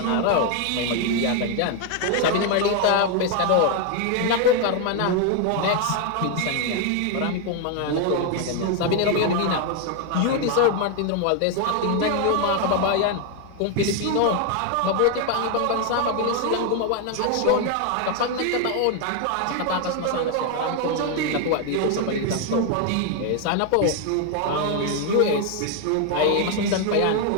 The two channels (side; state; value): both; different; correlation 0.01